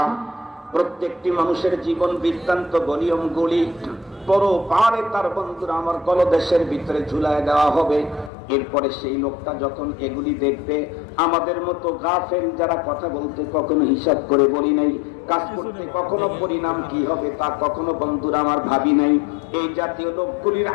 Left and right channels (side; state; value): right; drops out; at 8.3 s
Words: প্রত্যেকটি মানুষের জীবন বৃত্তান্ত নিয়মগুলি পরপারে তার বন্ধুরা আমার গলদেশের ভিতরে ঝুলায় দেওয়া হবে। এরপরে সেই লোকটা যখন এগুলি দেখবে, আমাদের মতো গাফেল যারা কথা বলতে কখনো হিসাব করে বলি নাই, কাজ করতে কখনো পরিণাম কি হবে তা কখনো বন্ধুরা আমার ভাবি নাই, এই জাতীয় লোকগুলির